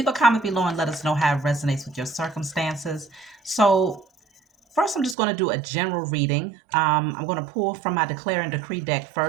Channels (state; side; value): drops out; left; at 5.2 s